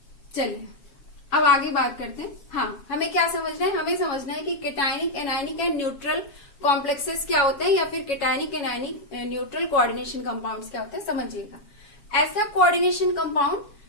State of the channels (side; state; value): right; late; 7.2 ms